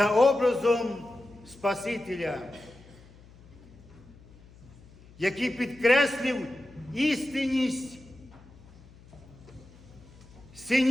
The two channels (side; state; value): left; noise; hum, 23 dB below the sound